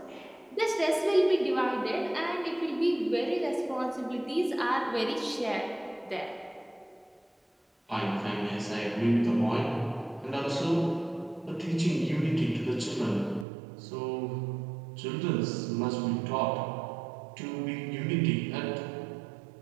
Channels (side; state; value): left; drops out; at 13.5 s